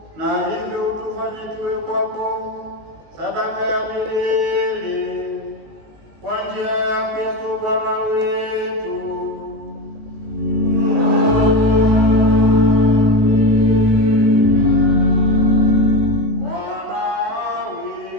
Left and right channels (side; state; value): left; late; 19 ms